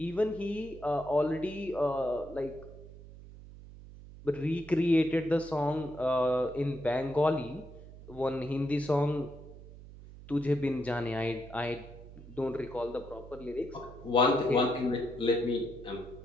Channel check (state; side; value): noise; right; hum, 17 dB below the sound